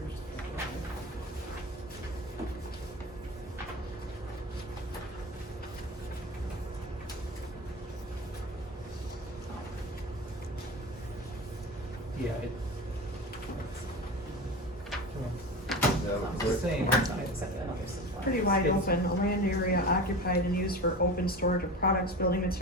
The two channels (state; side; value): normal; both; correlation 0.30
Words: pages. Yeah, Yeah, it's the same. Pretty wide It's- open, a land area occupied and used for open storage of products, building